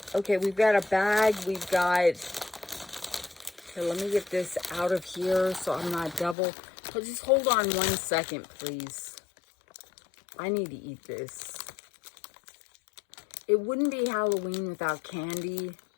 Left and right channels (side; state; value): right; drops out; at 6.4 s